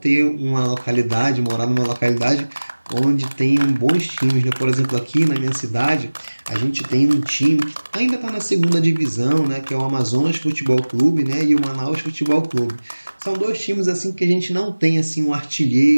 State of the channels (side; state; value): both; inverted; correlation -1.00